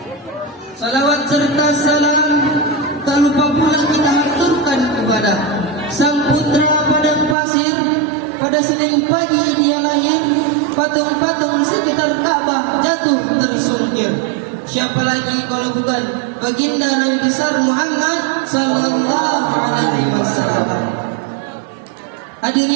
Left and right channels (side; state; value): left; drops out; at 7.4 s